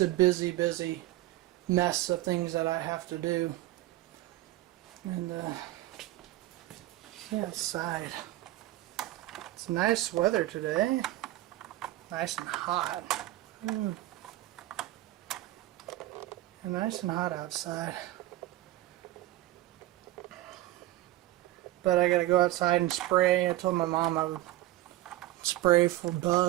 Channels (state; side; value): quieter; left; 15.8 dB